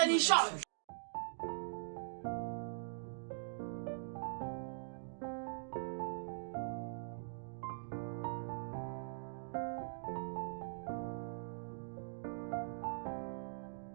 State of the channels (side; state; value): left; silent; digital silence